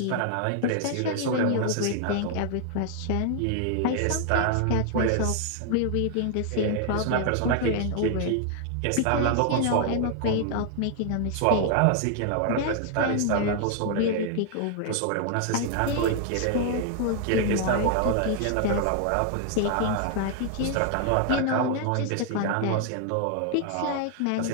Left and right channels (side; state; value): both; different; correlation 0.00